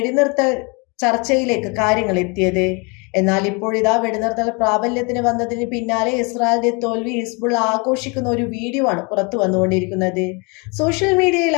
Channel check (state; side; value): quieter; right; 30.6 dB